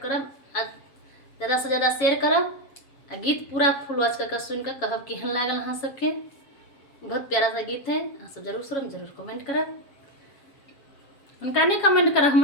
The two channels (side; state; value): right; late; 7.2 ms